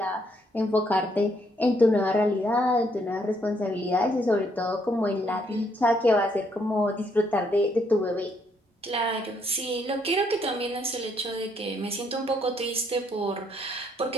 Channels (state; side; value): normal; both; correlation 0.71